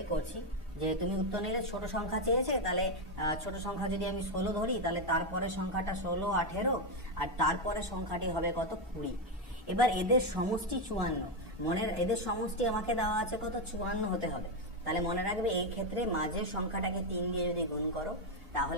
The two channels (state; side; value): normal; both; correlation 0.06